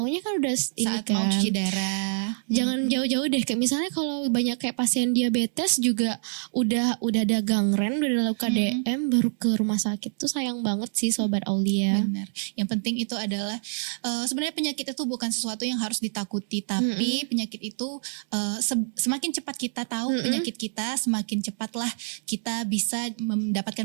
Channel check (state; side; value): silent; left; digital silence